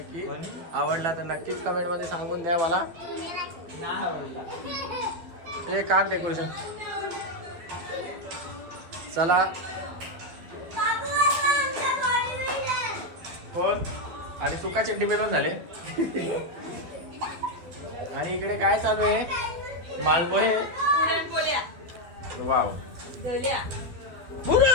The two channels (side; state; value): left; late; 12 ms